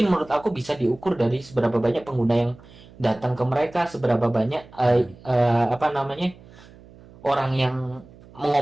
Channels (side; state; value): right; noise; hum, 23 dB below the sound